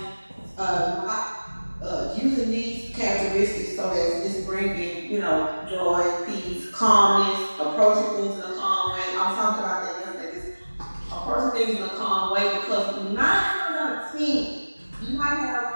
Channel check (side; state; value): both; inverted; correlation -1.00